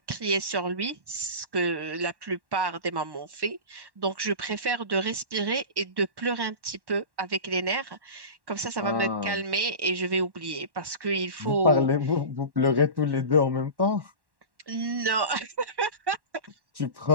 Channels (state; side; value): late; left; 1.1 ms